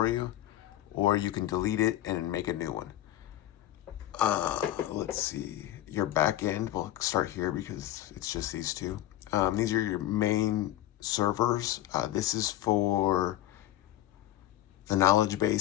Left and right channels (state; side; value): quieter; right; 13.8 dB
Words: you, or you can delete it and make a new one. Let's see, your backend, we'll start here because it's just these two. These are your main servers. This is for the knowledge